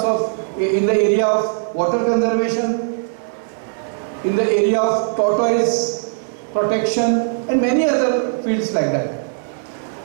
of, in the area of water conservation, in the area of tortoise protection and many other fields like that.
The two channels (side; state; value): left; silent; digital silence